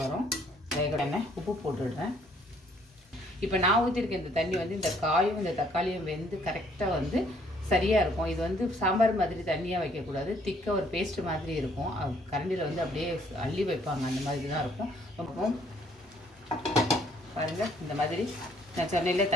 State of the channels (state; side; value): normal; both; correlation 0.63